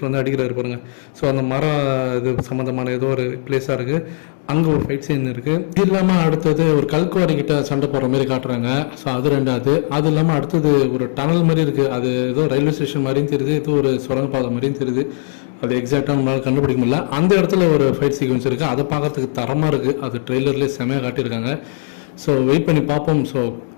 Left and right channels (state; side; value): silent; right; digital silence